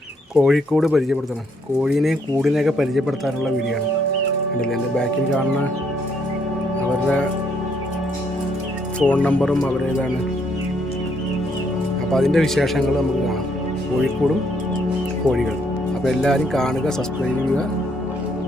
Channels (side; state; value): both; normal; correlation 0.71